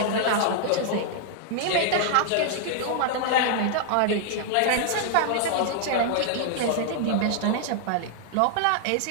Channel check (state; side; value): different; both; correlation -0.01